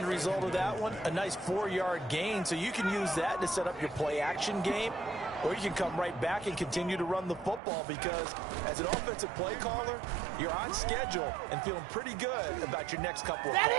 result of that one, a nice 4-yard gain, so you can use that to set up your play-action game, or you can come right back and continue to run the football because as an offensive play caller, you're on schedule and feeling pretty good about your next couple of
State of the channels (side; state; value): left; drops out; at 7.6 s